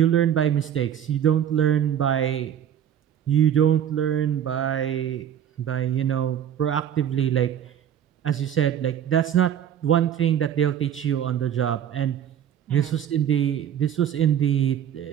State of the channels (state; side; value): quieter; left; 9.7 dB